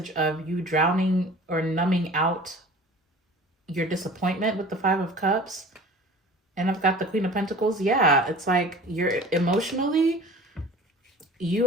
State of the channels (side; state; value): both; normal; correlation 0.42